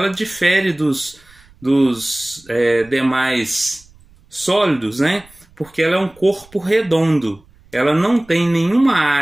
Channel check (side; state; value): right; noise; rumble, 28 dB below the sound